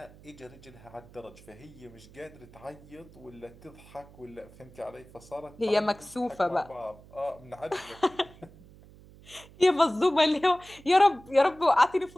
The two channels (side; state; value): right; noise; hum, 22 dB below the sound